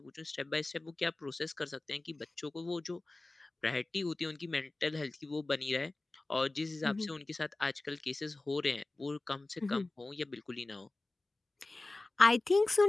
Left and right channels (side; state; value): right; quieter; 3.0 dB